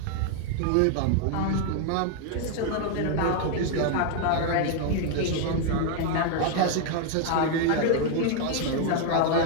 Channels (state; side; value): different; both; correlation 0.00